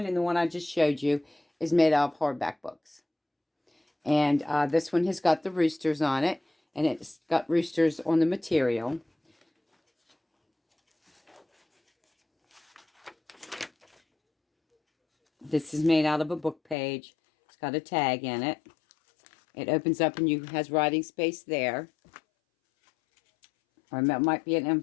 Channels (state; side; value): drops out; right; at 16.8 s